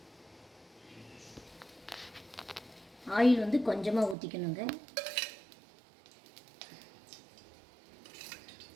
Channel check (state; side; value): drops out; left; at 4.2 s